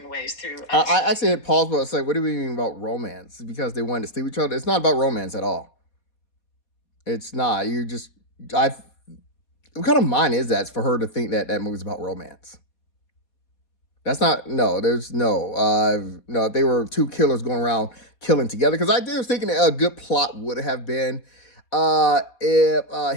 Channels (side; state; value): right; late; 4.2 ms